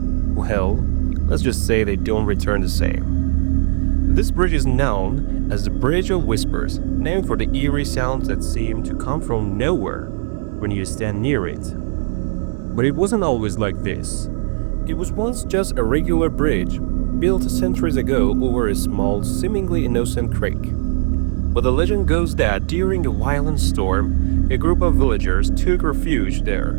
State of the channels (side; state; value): left; silent; 64 dB below the other